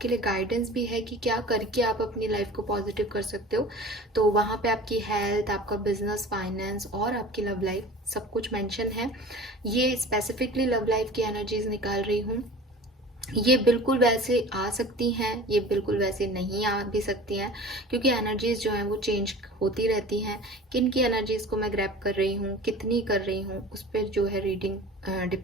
लिए गाइडेंस भी है कि क्या करके आप अपनी लाइफ को पॉजिटिव कर सकते हो। तो वहाँ पे आपकी हेल्थ, आपका बिजनेस, फाइनेंस और आपकी लव लाइफ सब कुछ मेंशन है। ये स्पेसिफिकली लव लाइफ की एनर्जीज निकाल रही हूँ। ये बिल्कुल वैसे आ सकती हैं, ये बिल्कुल वैसे नहीं आ भी सकती हैं, क्योंकि एनर्जीज जो हैं वो चेंज होती रहती हैं। किन की एनर्जीज को मैं ग्रैब कर रही हूँ, कितनी कर रही हूँ, उस पर जो है रीडिंग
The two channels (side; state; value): both; normal; correlation 0.39